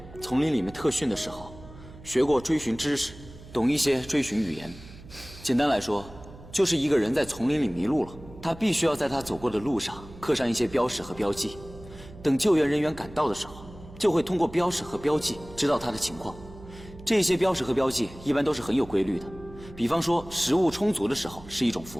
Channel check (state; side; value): noise; right; hum, 18 dB below the sound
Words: 丛林里面特训的时候，学过追寻知识，懂一些追寻语言。简单来说，就是一个人在丛林里迷路了，他必须要在他走过的路上刻上一些标识和标记，等救援人员赶到的时候，就会通过标识和标记知道他的情况。这些标识和标记一般都是很有规律的，比方说食物充足的时候是一种符